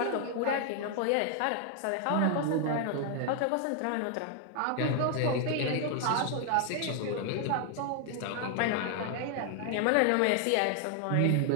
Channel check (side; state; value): both; different; correlation 0.00